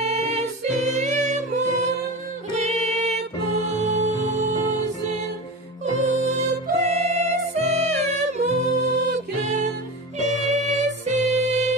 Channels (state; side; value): normal; both; correlation 0.27